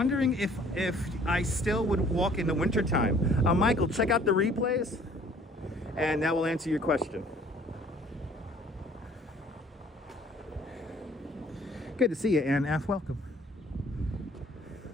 if I still would walk in the wintertime. Michael, check out the replays, and that will answer your question. Good to see you, Ann F. Welcome.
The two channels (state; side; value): normal; both; correlation 0.56